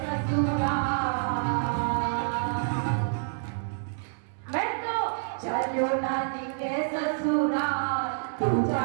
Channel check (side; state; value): left; silent; digital silence